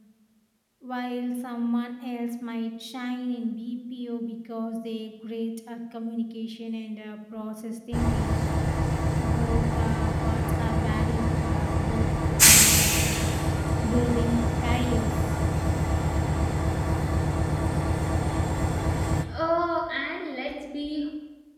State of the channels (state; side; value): identical; both; correlation 1.00